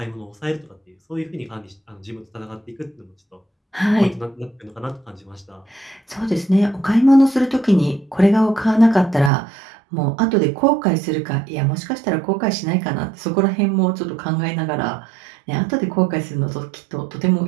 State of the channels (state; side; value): drops out; left; at 9.3 s